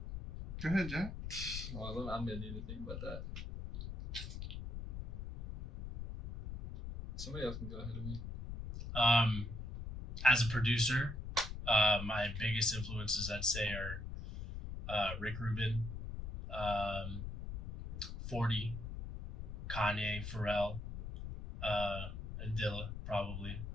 Go ahead, Jack. Well, I'm gonna need to think about that. Somebody else can go ahead of me. As a producer, my biggest influences, I'd say, are Rick Rubin, 40, Kanye, Pharrell, and Dilla probably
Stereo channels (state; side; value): noise; left; rumble, 7 dB below the sound